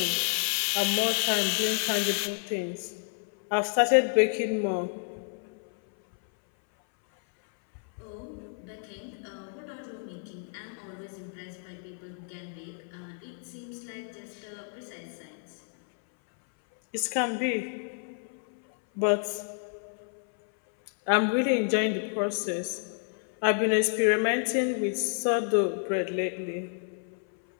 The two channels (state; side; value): silent; right; 58 dB below the other